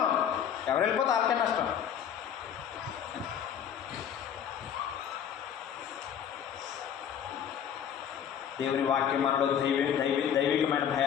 ఎవరు వెళ్ళిపోతే వాళ్ళకే నష్టం. దేవుని వాక్యం మనలో దైవికమైన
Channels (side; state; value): right; quieter; 8.8 dB